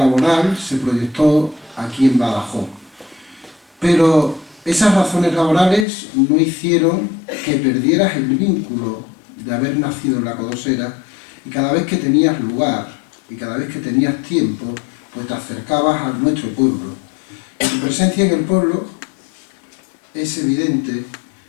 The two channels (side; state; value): right; drops out; at 5.9 s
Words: se proyectó aquí en Badajoz. Pero esas razones laborales no hicieron que perdieras el vínculo de haber nacido en La Codosera, y cada vez que tenías lugar y cada vez que tenías tiempo, pues te acercabas a nuestro pueblo. Y tu presencia en el pueblo es evidente